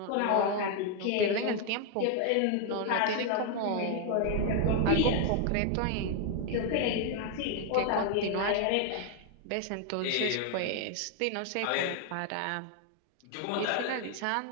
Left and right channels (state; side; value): different; both; correlation 0.01